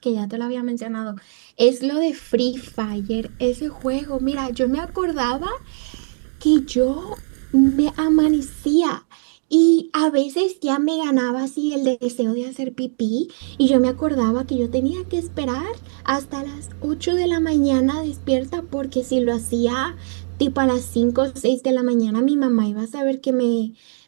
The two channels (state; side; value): silent; left; digital silence